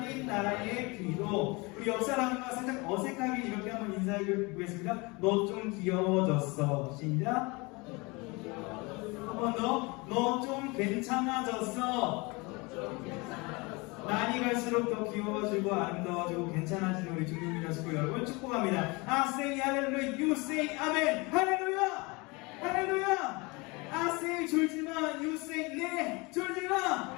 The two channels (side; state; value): right; quieter; 26.4 dB